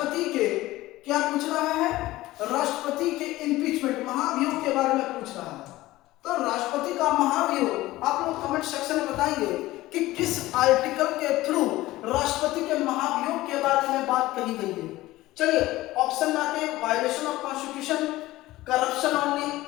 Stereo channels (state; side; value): quieter; right; 17.4 dB